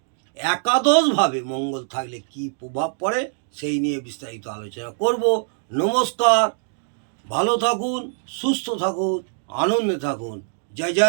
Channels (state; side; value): silent; left; digital silence